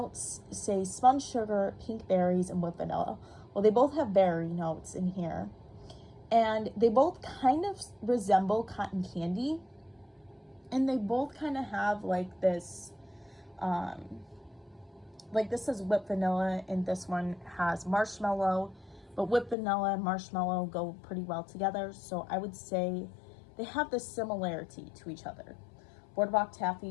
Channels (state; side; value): drops out; right; at 19.6 s